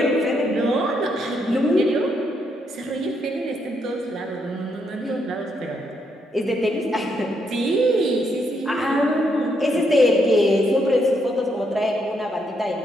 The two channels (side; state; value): both; normal; correlation 0.77